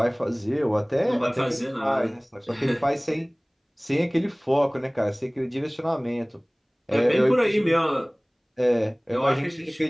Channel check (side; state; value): both; identical; correlation 1.00